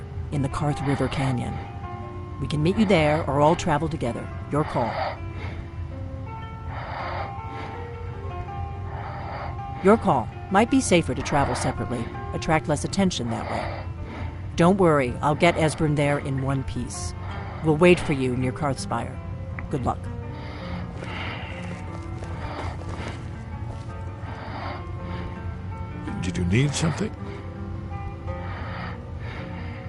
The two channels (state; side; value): identical; both; correlation 1.00